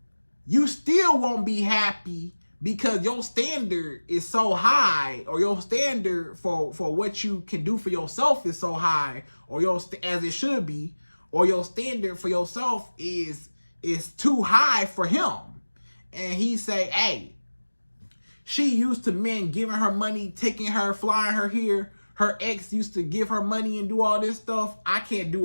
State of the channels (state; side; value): inverted; both; correlation -1.00